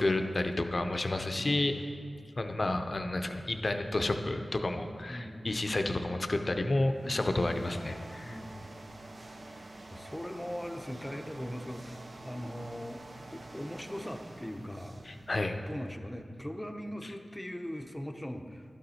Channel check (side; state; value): both; normal; correlation 0.97